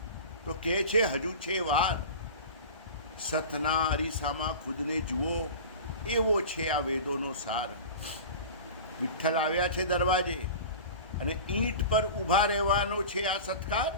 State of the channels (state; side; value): inverted; both; correlation -0.34